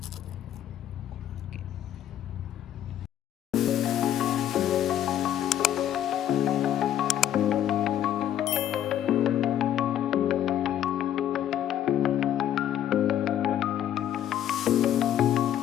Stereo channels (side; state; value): right; quieter; 11.1 dB